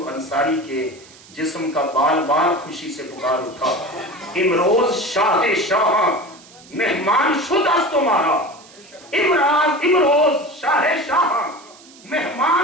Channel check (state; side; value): noise; right; hiss, 23 dB below the sound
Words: انصاری کے جسم کا بال بال خوشی سے پکار اٹھا، امروز شاہ شاہ مہمان شد است تمہارا، امروز شاہ شاہ